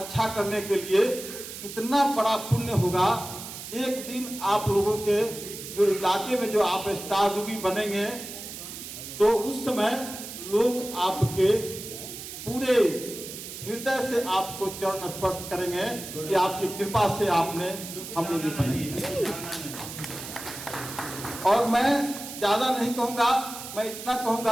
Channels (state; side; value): noise; right; hiss, 10 dB below the sound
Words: करने के लिए इतना बड़ा पुण्य होगा। एक दिन आप लोगों के जो इलाके में जो आप स्टार रूबी बनेंगे, तो उस समय लोग आपके पूरे हृदय से आपको चरण स्पर्श करेंगे कि आपकी कृपा से आपने हम लोग बने। और मैं ज्यादा नहीं कहूंगा, मैं इतना